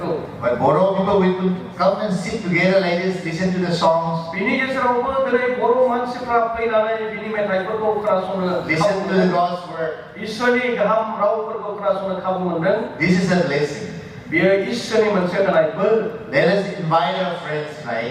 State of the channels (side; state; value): both; identical; correlation 1.00